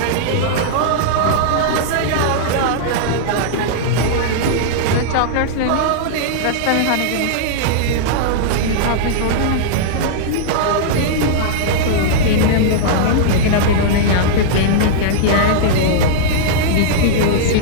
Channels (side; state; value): both; different; correlation -0.02